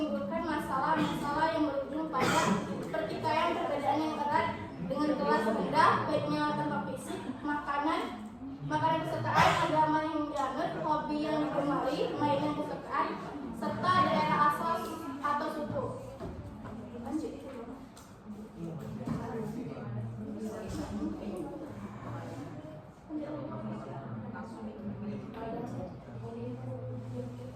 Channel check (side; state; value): both; identical; correlation 1.00